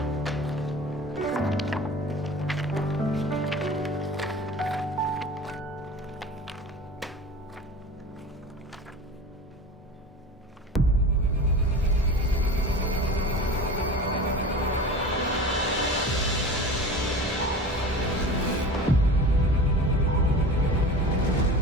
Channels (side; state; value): both; normal; correlation 0.36